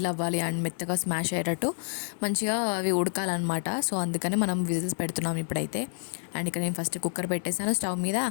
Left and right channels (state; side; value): silent; right; 59 dB below the other